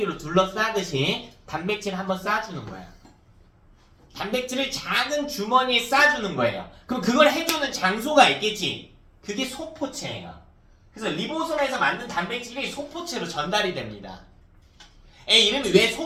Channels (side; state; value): both; identical; correlation 1.00